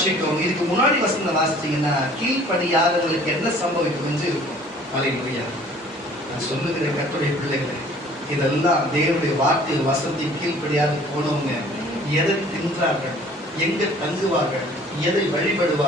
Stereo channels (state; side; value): normal; both; correlation 0.52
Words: இதுக்கு முன்னாடி வசனம் வாசிச்சீங்கன்னா கீழ்ப்படியாதவர்களுக்கு என்ன சம்பவிக்கும் என்று இருக்கும். அல்லேலூயா. நான் சொல்லுகிற கர்த்தருடைய பிள்ளைகளே, இதெல்லாம் தேவனுடைய வார்த்தை வசனத்தை கீழ்ப்படியாது போனவங்க எதை தின்றார்கள், எங்க தங்குவார்கள், எதை